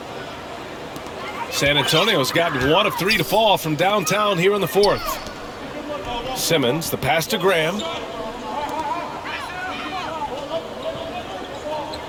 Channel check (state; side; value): identical; both; correlation 1.00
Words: San Antonio's gotten 1 of 3 to fall from downtown here in the fourth. Simmons, the pass to Graham.